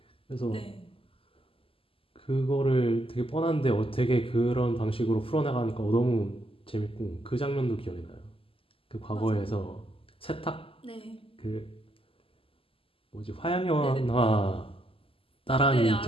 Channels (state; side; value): late; right; 0.26 ms